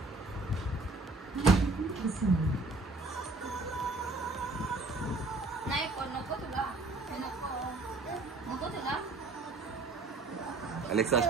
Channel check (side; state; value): left; quieter; 3.3 dB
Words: नाही नको तुला नको तुला अलेक्सा